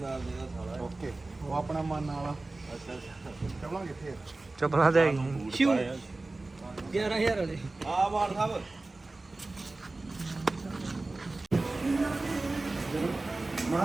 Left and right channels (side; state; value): left; quieter; 3.2 dB